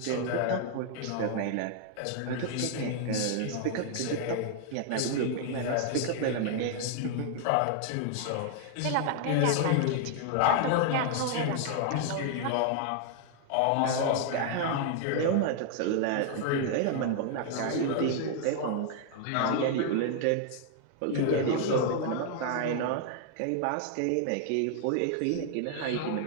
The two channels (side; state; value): both; different; correlation 0.00